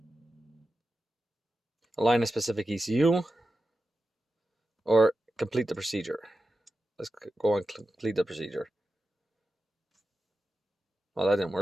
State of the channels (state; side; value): normal; both; correlation 0.92